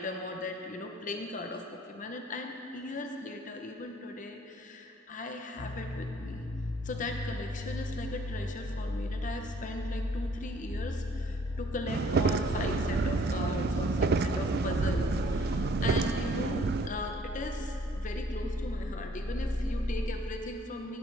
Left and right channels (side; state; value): both; normal; correlation 0.60